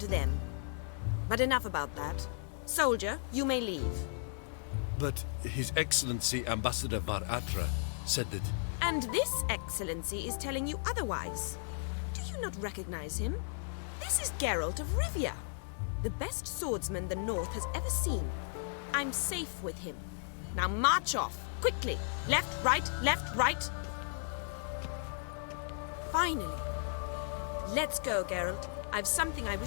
them? But enough about that. Soldier, you may leave. But His Excellency Ambassador Var Atra said that... And this excellency is telling you otherwise. Do you not recognize him? This is Geralt of Rivia, the best swordsman the North has ever seen. I'm safe with him. Now march off, quickly. Left, right. Finally. Let's go, Geralt. I've something I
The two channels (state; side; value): silent; right; digital silence